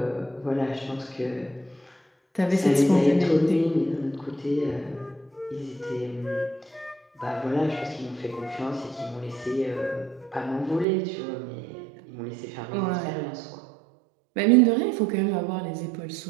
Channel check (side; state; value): left; drops out; at 10.9 s